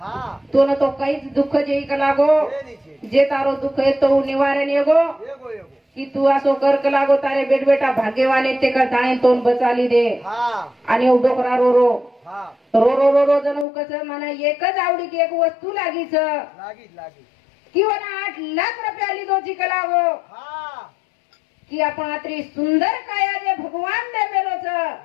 तो न तो काहीच दुःख जेई का लागो ये नीचे जे तारो दुःख आहे तो निवारण येगो एगो की तू असो कर लागो तारे बेट बेटा भाग्यवाने ते का जाणे तोन बचाली दे हाँ आणि डोकरा रो हाँ रो जण कस मला एकच आवडी की एक वस्तू लागीच लागी किंवा 8 लाख रुपया लीधो जी का लागो हाँ की आपण आत्री सुंदर काया जे भगवान ने मेलो छ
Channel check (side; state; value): right; drops out; at 13.7 s